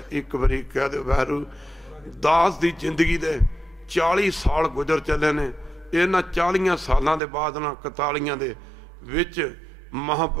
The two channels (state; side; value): drops out; left; at 7.2 s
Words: एक बारी कह दे वैरू दास की जिंदगी दे 40 साल गुजर चले ने, इन्हां 40 सालों के बाद ना 41 दे विच